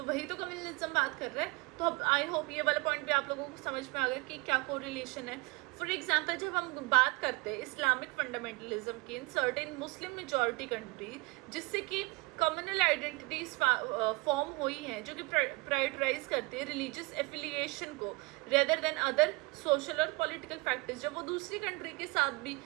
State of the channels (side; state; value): left; quieter; 25.8 dB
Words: वही तो कम्युनलिज्म बात कर रहा है। तो अब आई होप ये वाला पॉइंट भी आप लोगों को समझ में आ गया कि क्या कोरिलेशन है। फॉर एग्जाम्पल, जब हम बात करते हैं इस्लामिक फंडामेंटलिज्म की in certain Muslim majority country, जिससे कि कम्युनल आइडेंटिटीज फॉर्म हुई हैं जो कि प्रायोरिटाइज करती है रिलीजियस एफिलिएशन को रेदर देन अदर सोशल और पॉलिटिकल फैक्टर्स। जब वो दूसरी कंट्री के साथ भी